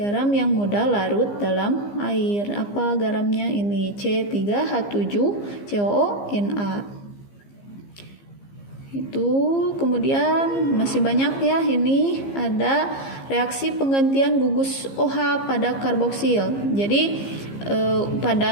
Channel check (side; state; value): right; late; 15 ms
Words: yang mudah larut dalam air. Apa garamnya? Ini C3H7COONa. Itu kemudian masih banyak ya, ini ada reaksi penggantian gugus OH pada karboksil. Jadi